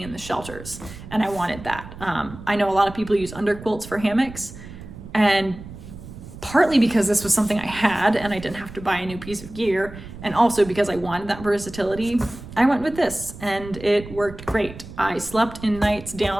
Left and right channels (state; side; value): noise; right; rumble, 14 dB below the sound